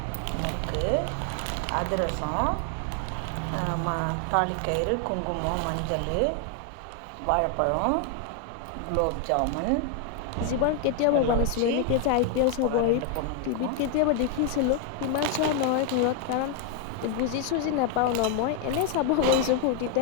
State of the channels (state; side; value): different; both; correlation 0.01